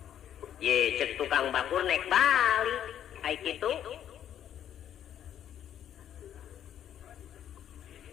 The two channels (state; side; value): quieter; right; 10.2 dB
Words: Ye cek tukang bakul nek balik ai kitu.